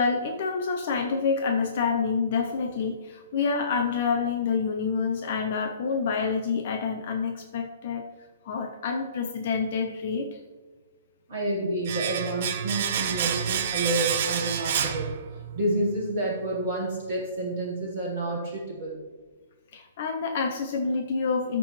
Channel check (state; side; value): inverted; both; correlation -0.50